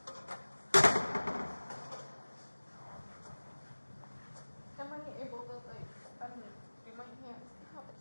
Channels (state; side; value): inverted; both; correlation -1.00